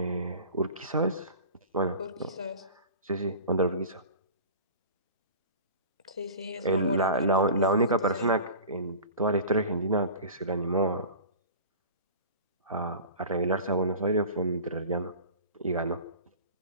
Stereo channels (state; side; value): inverted; both; correlation -0.37